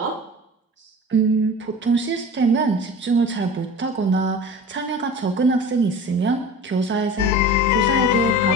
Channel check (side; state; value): both; normal; correlation 0.37